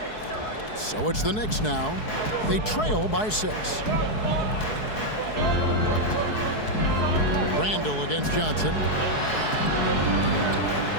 So it's the Knicks now. They trail by 6. Randall against Johnson.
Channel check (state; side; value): late; right; 4.7 ms